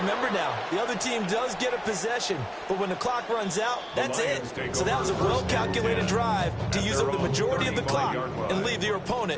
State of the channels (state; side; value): identical; both; correlation 1.00